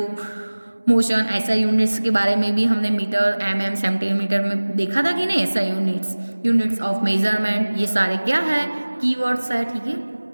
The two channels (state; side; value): inverted; both; correlation -1.00